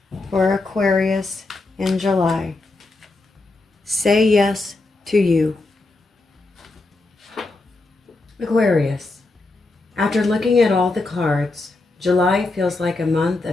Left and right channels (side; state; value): right; quieter; 3.2 dB